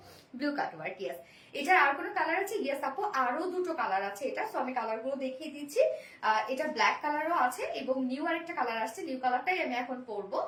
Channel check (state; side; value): identical; both; correlation 1.00